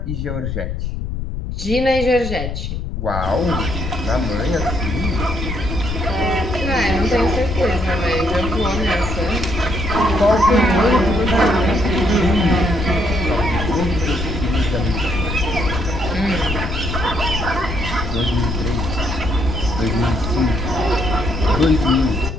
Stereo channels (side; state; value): left; noise; rumble, 5 dB below the sound